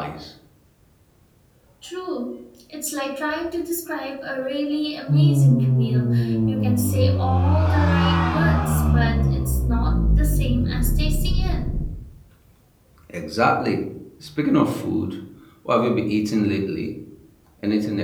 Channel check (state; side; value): identical; both; correlation 1.00